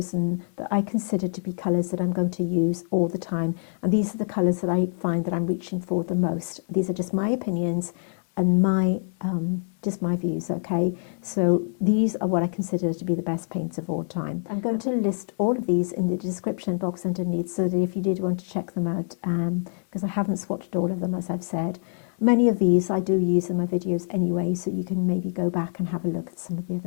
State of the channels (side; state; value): right; silent; digital silence